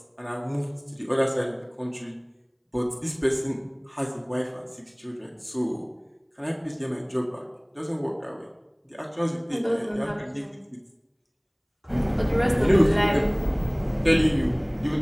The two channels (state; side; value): identical; both; correlation 1.00